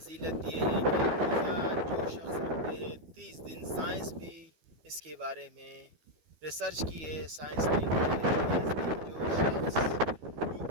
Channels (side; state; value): left; late; 12 ms